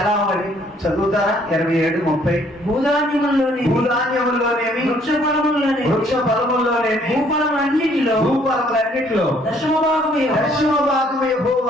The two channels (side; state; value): both; normal; correlation 0.63